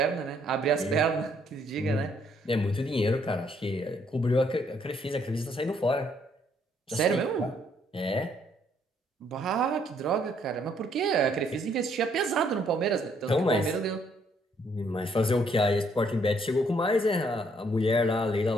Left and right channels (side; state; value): both; normal; correlation 0.68